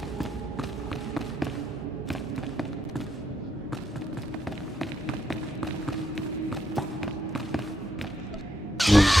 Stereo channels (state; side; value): normal; both; correlation 0.78